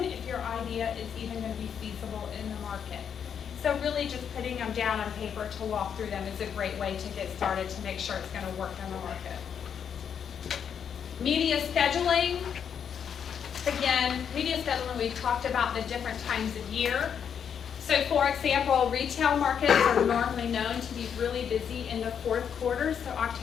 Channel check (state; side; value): quieter; right; 7.8 dB